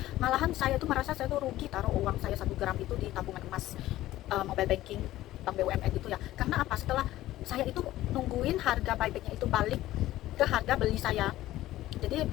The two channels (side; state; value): right; quieter; 15.2 dB